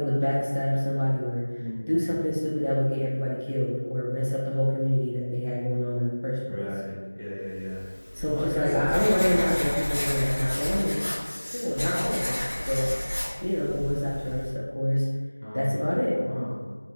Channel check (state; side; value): inverted; both; correlation -1.00